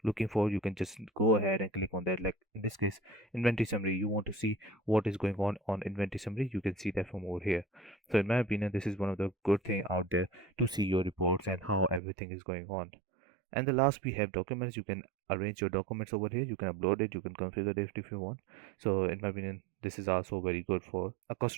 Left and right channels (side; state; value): left; drops out; at 12.0 s